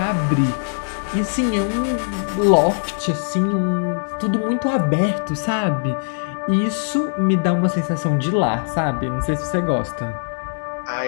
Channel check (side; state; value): right; silent; digital silence